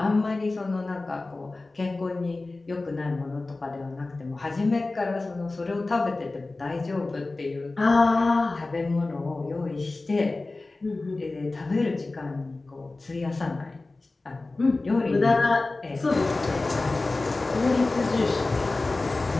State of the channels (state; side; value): quieter; right; 3.3 dB